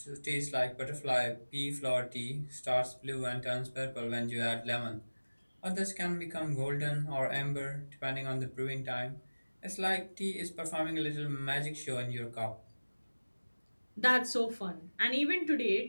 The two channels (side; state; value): both; inverted; correlation -1.00